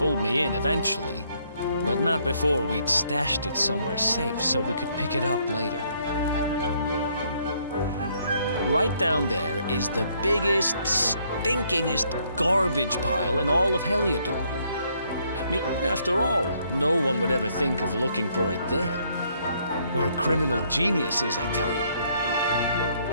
me in eventually, but not before we'd stashed it somewhere safe so we could pick it up later. Right down there is the biggest, stinkingest garbage pile in all of Heliodor. I mean, after all, no one would ever think of looking for it there. Where criminal genius is, I tell you.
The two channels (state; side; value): inverted; both; correlation -0.69